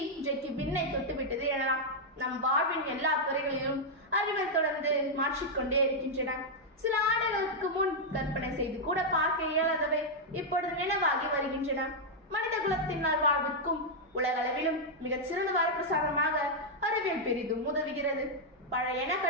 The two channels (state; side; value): normal; both; correlation -0.03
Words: இன்றைக்கு விண்ணை தொட்டுவிட்டது எனலாம். நம் வாழ்வின் எல்லா துறைகளிலும் அறிவியல் தொடர்ந்து மாற்றிக்கொண்டே இருக்கின்றன. சில ஆண்டுகளுக்கு முன் கற்பனை செய்து கூட பார்க்க இயலாதவை இப்பொழுது நினைவாகி வருகின்றன. மனித குலத்தின் நல்வாழ்விற்கும் உலகளவிலும் மிகச் சிறந்த வரப்பிரசாதமாக அறிவியல் பெரிதும் உதவுகிறது. பழையன